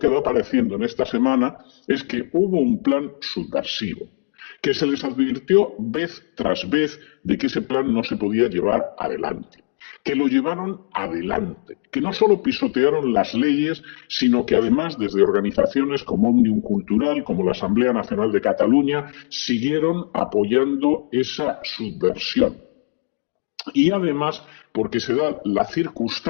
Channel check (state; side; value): silent; right; digital silence